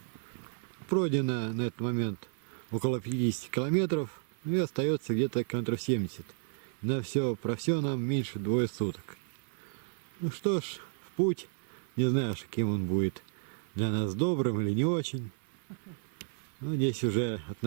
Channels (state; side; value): silent; left; 56 dB below the other